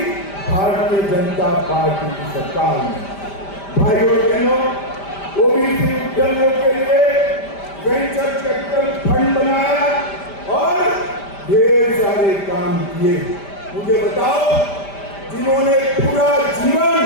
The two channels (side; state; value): right; late; 5.1 ms